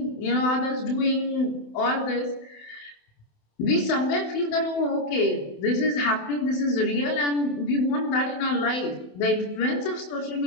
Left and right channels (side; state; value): right; late; 28 ms